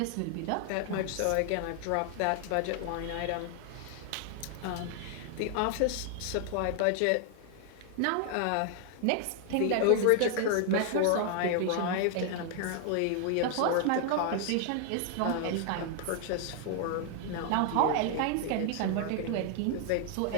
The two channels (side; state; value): both; different; correlation 0.00